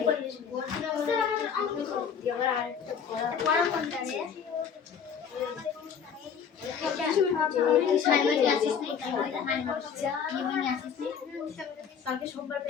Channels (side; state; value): right; quieter; 7.1 dB